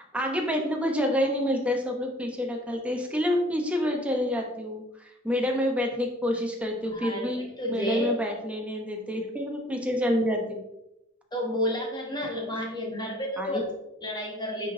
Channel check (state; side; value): normal; both; correlation 0.54